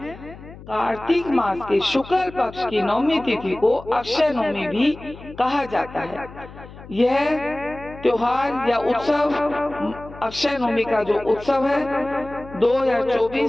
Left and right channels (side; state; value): left; noise; hum, 17 dB below the sound